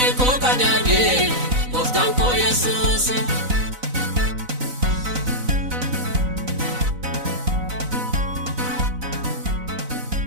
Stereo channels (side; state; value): left; late; 4.0 ms